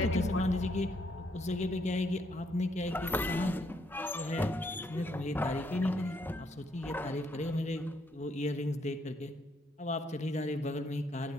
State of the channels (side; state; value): both; normal; correlation 0.72